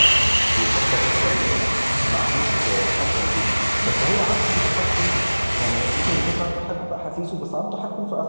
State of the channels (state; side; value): inverted; both; correlation -1.00